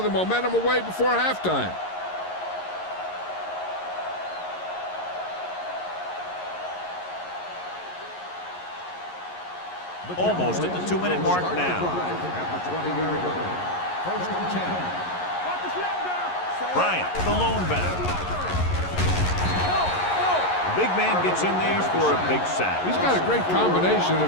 the momentum away before halftime. Almost at the 2-minute mark now. First and 10. Bryant, the lone back. The big man gets in there for a big sack. He's got a great combination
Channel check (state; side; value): late; right; 11 ms